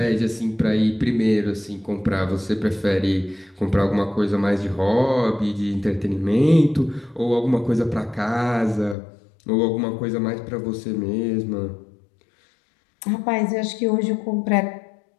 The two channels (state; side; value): drops out; right; at 9.0 s